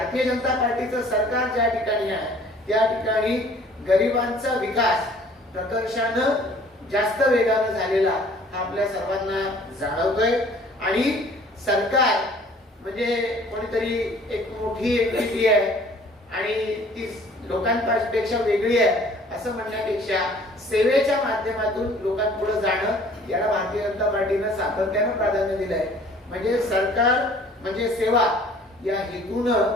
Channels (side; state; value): both; normal; correlation 0.53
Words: जनता पार्टीचं सरकार ज्या ठिकाणी आहे त्या ठिकाणी गरिबांचा विकास प्रकर्षानं जास्त वेगानं झालेला हा आपल्या सर्वांना जाणवतोय। आणि सरकार म्हणजे कोणीतरी एक मोठी एंटिटी आहे आणि ती लोकांपेक्षा वेगळी आहे असं म्हणण्यापेक्षा सेवेच्या माध्यमातून लोकांपुढे जाणं याला भारतीय जनता पार्टीनं सातत्यानं प्राधान्य दिलंय। म्हणजे सरकार म्हणजे सेवा या